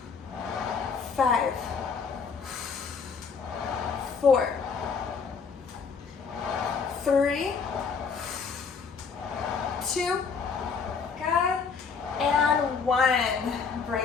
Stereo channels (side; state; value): right; quieter; 5.6 dB